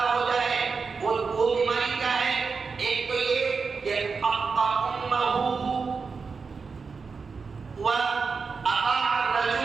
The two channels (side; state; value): left; quieter; 5.0 dB